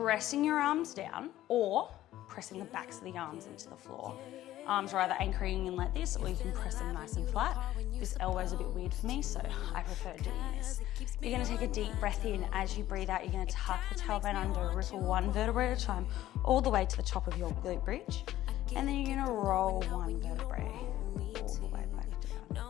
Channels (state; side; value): quieter; right; 14.1 dB